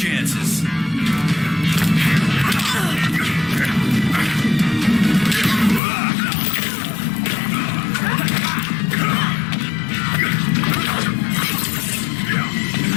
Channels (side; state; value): right; drops out; at 5.8 s